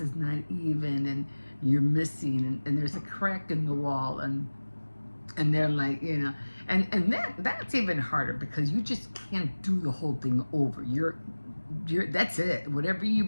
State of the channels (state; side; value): inverted; both; correlation -1.00